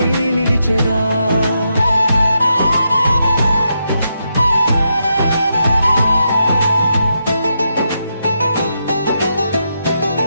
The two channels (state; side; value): inverted; both; correlation -0.83